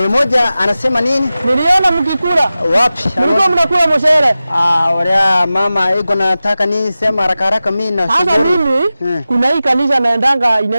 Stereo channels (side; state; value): both; inverted; correlation -0.95